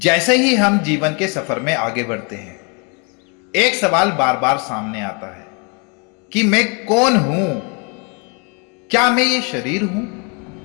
ही हम जीवन के सफर में आगे बढ़ते हैं, एक सवाल बार बार सामने आता है कि मैं कौन हूं? क्या मैं ये शरीर हूं,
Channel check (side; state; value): right; quieter; 34.0 dB